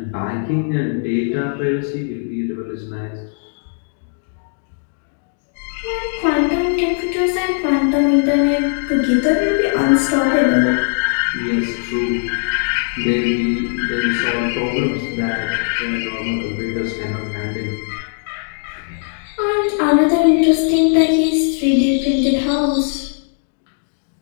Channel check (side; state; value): right; silent; digital silence